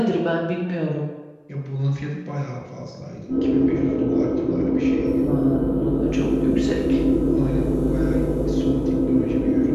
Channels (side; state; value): both; identical; correlation 1.00